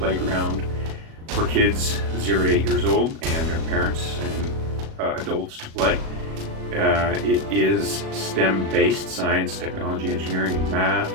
for kids 0 to 8 years old and their parents and adults to play. It is STEM-based, science, technology, engineering, and math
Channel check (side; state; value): left; late; 37 ms